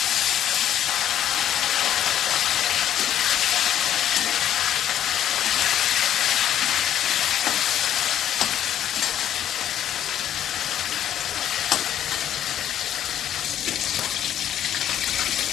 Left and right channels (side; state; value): right; quieter; 10.8 dB